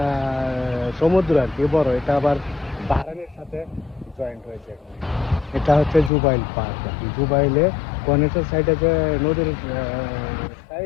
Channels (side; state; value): right; drops out; at 6.1 s